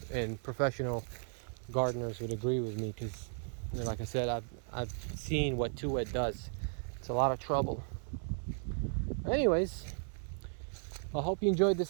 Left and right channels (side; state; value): left; silent; 54 dB below the other